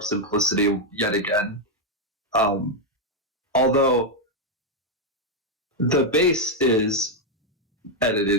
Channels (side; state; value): both; normal; correlation 0.01